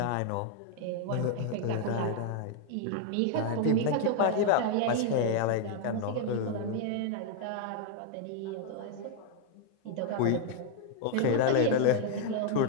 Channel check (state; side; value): different; both; correlation 0.00